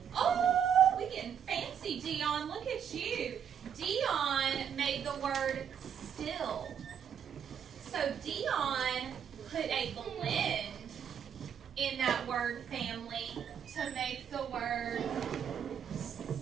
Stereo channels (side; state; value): left; quieter; 8.3 dB